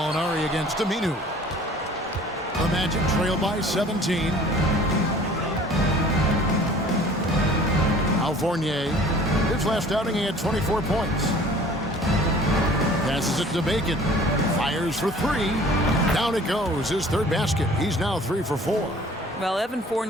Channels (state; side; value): normal; both; correlation 0.49